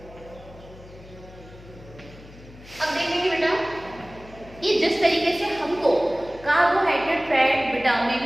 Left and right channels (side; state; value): left; noise; hum, 20 dB below the sound